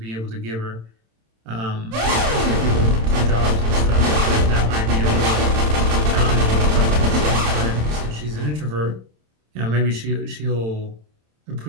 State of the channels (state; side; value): late; left; 27 ms